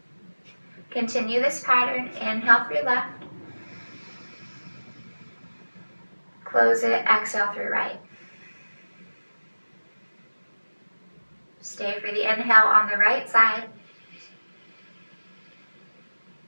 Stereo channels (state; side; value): inverted; both; correlation -1.00